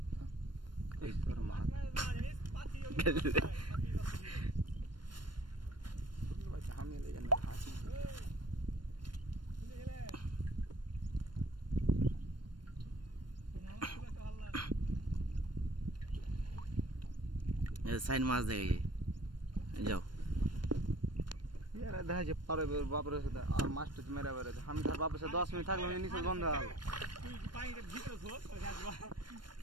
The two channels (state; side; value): late; left; 0.72 ms